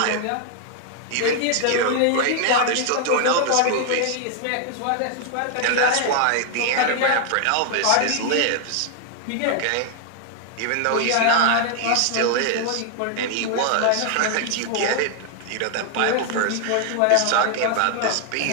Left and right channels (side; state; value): both; different; correlation 0.00